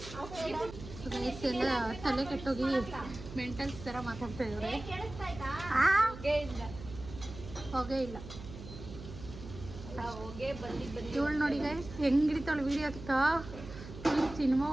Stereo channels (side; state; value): right; noise; hum, 13 dB below the sound